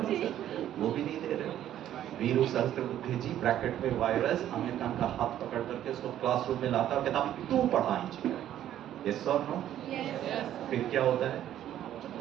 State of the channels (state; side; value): quieter; left; 11.6 dB